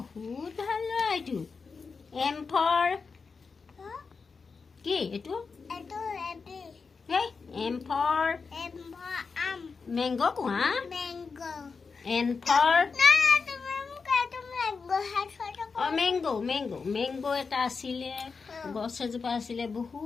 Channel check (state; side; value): quieter; right; 4.9 dB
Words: ভাল ল'ৰা এইটো M for কি এইটো eto ebi এই M for mango কোৱা mango N for na तुम्हें मुझे mango hat photo মেংগো এটা আছিলে গছ এজোপা আছিলে